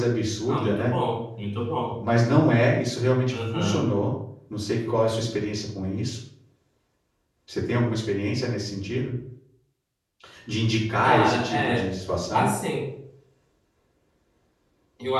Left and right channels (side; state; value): both; identical; correlation 1.00